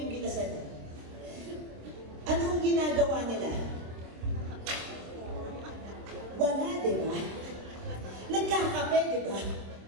niyo. Anong ginagawa nila? Wala, di ba? Nagkakape, di ba?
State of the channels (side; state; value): left; late; 26 ms